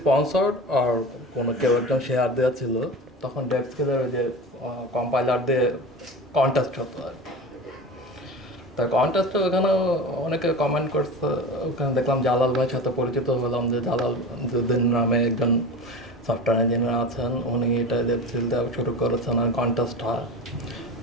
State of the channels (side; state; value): both; normal; correlation 0.30